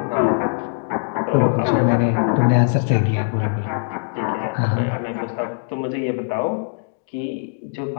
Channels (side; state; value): right; silent; digital silence